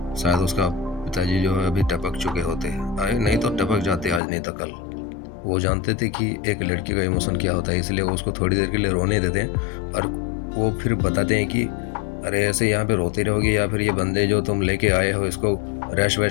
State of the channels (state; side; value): drops out; right; at 4.2 s